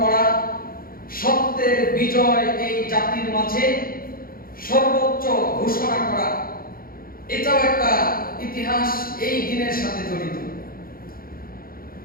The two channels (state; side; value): late; right; 0.42 ms